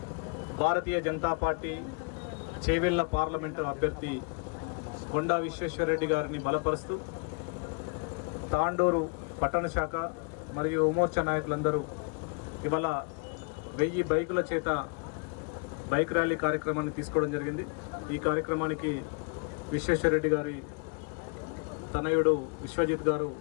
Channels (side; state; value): right; quieter; 34.4 dB